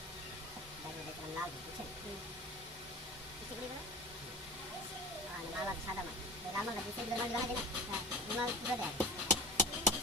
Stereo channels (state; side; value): normal; both; correlation 0.33